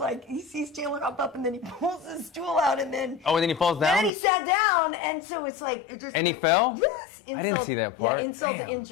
he sees Chandler hop up, and then he pulls his stool out, and then... Oh, and then he falls down? And then he sat down, and so it's like... it just. And he fell? Yes. I didn't see that part. Yeah, insult to Damn.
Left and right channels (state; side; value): drops out; right; at 4.1 s